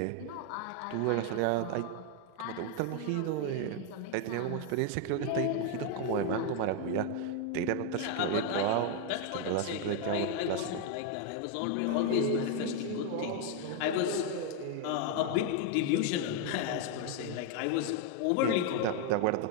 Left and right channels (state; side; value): different; both; correlation 0.01